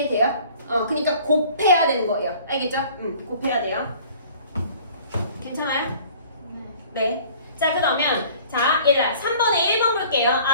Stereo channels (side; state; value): both; inverted; correlation -0.51